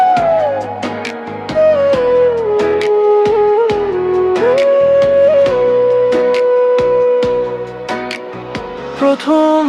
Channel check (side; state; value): both; identical; correlation 1.00